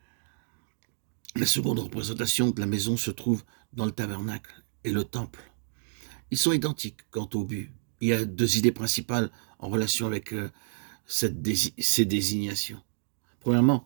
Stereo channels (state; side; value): silent; left; digital silence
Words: La seconde représentation de la maison se trouve dans le tabernacle et le temple. Ils sont identiques quant au but. Il y a 2 idées principales en relation avec ces désignations. Premièrement,